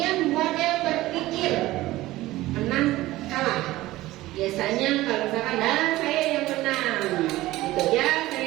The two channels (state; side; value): quieter; left; 17.2 dB